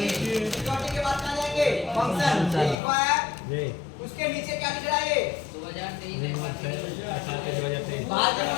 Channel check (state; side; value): drops out; right; at 2.8 s